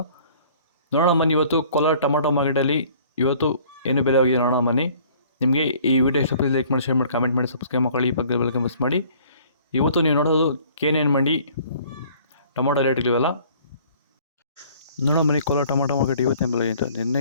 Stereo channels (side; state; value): both; inverted; correlation -0.55